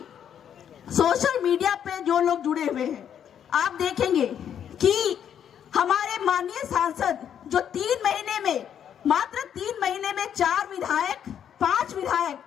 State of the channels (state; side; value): quieter; right; 9.0 dB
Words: सोशल मीडिया पे जो लोग जुड़े हुए हैं, आप देखेंगे कि हमारे माननीय सांसद जो 3 महीने में, मात्र 3 महीने में 4 विधायक, 5 विधायक